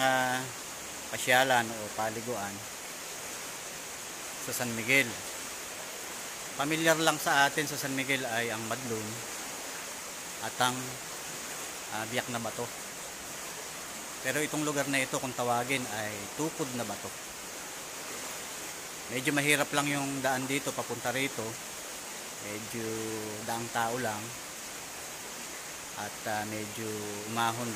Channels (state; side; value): identical; both; correlation 1.00